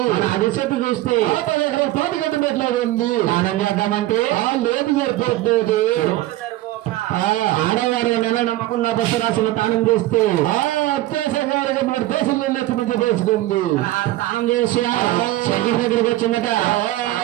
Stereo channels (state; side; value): quieter; left; 16.2 dB